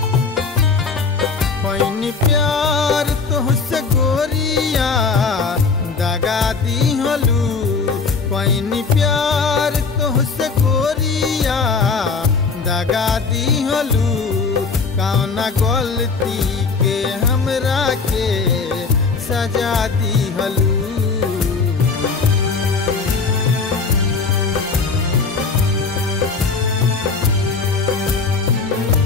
पैनी प्यार तुहसे गोरिया दगा दिहलू। पैनी प्यार तुहसे गोरिया दगा दिहलू। कौना गलती के हमरा के सजा दिहलू।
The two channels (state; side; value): quieter; right; 4.7 dB